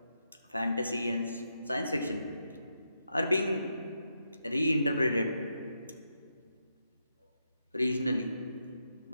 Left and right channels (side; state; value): both; inverted; correlation -0.83